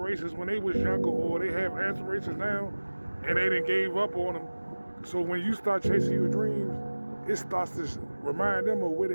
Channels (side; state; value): both; inverted; correlation -1.00